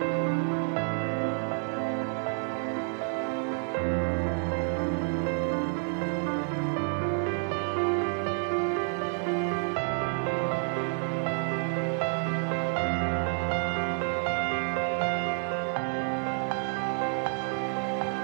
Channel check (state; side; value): silent; left; 57 dB below the other